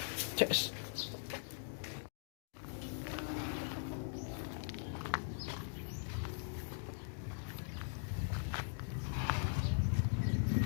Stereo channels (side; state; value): right; silent; digital silence